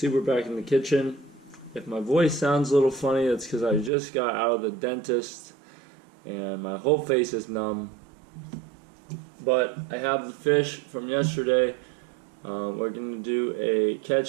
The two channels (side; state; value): left; drops out; at 3.9 s